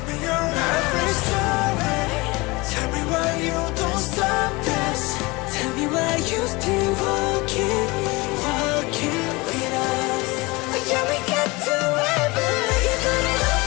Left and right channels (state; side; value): quieter; right; 23.9 dB